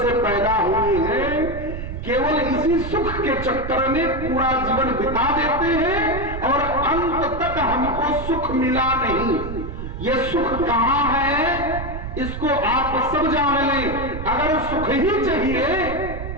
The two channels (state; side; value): noise; right; rumble, 8 dB below the sound